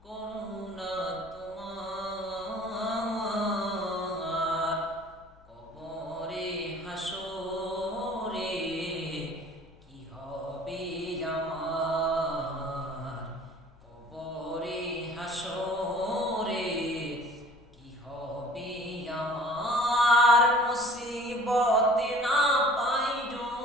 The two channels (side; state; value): left; noise; hum, 26 dB below the sound